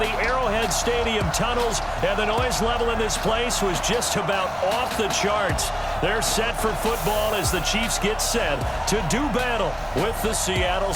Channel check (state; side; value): identical; both; correlation 1.00